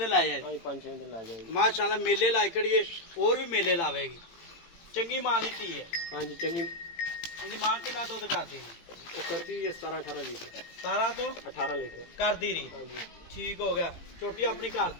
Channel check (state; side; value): late; right; 18 ms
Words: लै हाँ जाएगी जी 5-6 दिन ला जाएगी माशाल्लाह। मेले लाई कड़िए और भी मेले लावेगी। चंगी मां दी धी है। हाँ जी चंगी। इनकी मां कितना दुध करती है? वो करती है 17-18 लीटर। 17 तो 18 लीटर करती रही? हाँ जी। ठीक हो गया। छोटी अपनी